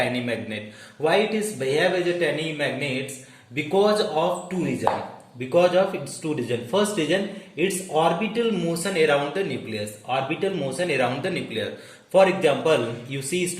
magnet. Why it is behave as a tiny magnets? Because of two reasons. Because of its two reasons. First reason, its orbital motion around the nucleus. Orbital motion around the nucleus. For example, you see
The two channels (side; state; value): both; identical; correlation 1.00